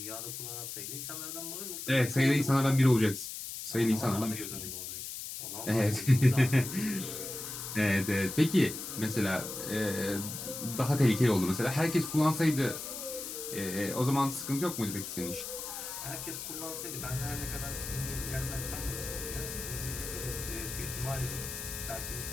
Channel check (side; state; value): left; noise; hiss, 7 dB below the sound